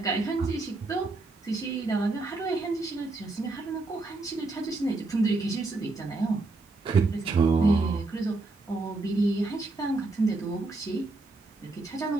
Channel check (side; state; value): left; quieter; 3.3 dB